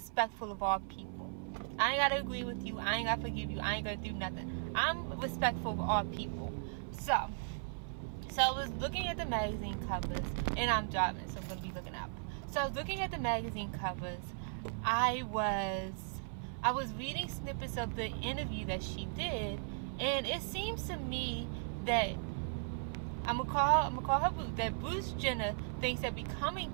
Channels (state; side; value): silent; left; 53 dB below the other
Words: of all people. I ain't got to agree with you. I ain't got to forgive you. I ain't going to do nothing. I'm respectful of all people. So I was looking at the magazine covers, and I'm driving, so I'm going to be looking up. So I was looking at the magazine covers. I was reading snippets of the interview that she did, and it seems to me that I'm gonna call her Bruce. That Bruce Jenner thinks that